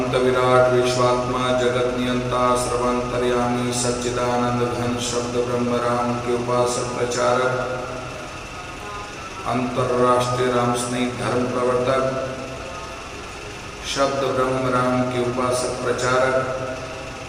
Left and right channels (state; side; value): identical; both; correlation 1.00